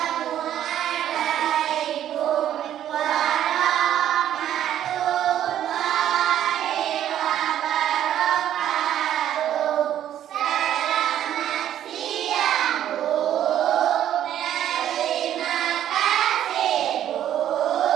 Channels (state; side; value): quieter; left; 11.1 dB